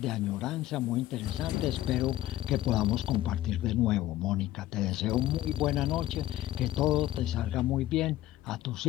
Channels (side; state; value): right; quieter; 14.7 dB